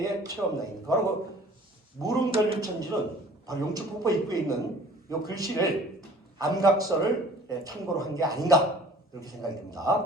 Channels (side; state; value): both; normal; correlation 0.49